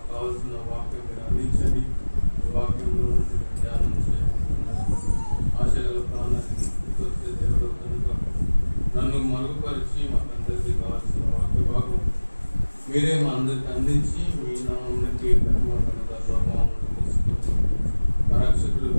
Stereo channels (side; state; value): both; inverted; correlation -1.00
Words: కావాల్సిన వాక్యం మీరు అందించండి. ఈ వాక్యంలో నుండి ధ్యానం చేయాలి. ఆశగల ప్రాణానికి వచ్చే దేవుడు కనుక నన్ను మరుగుపరిచి మాకందరికీ కావాల్సిన వాక్య భాగం మీరే మా అందరికి అందించి మీ నామానికి ఘనత ప్రభావం తీసుకుని మా రక్షకుడు